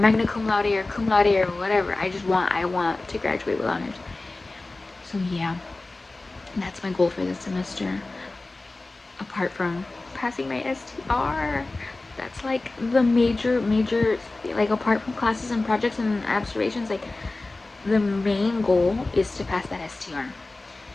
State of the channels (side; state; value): right; quieter; 3.1 dB